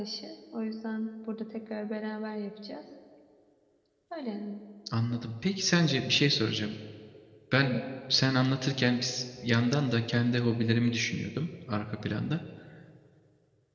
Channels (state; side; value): identical; both; correlation 1.00